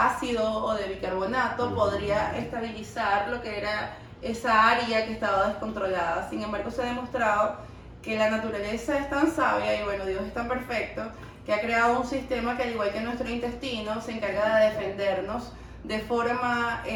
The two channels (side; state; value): both; identical; correlation 1.00